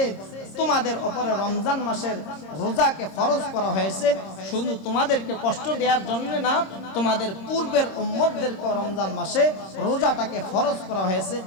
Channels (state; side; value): late; right; 26 ms